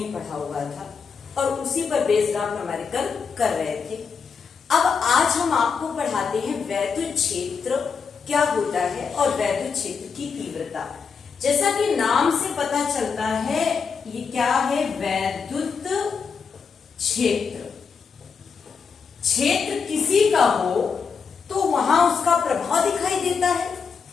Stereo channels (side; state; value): right; quieter; 5.8 dB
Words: पढ़ा हुआ था और उसी पर बेस्ड आप न्यूमेरिकल कर रहे थे। अब आज हम आपको पढ़ाते हैं वैद्युत क्षेत्र क्या होता है और वैद्युत क्षेत्र की तीव्रता। जैसा कि नाम से पता चलता है ये क्या है, वैद्युत क्षेत्र। क्षेत्र किसी का हो तो वहां उसका प्रभाव दिखाई देता है।